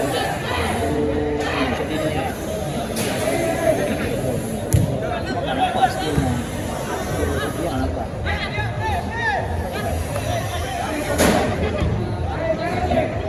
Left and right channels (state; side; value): identical; both; correlation 1.00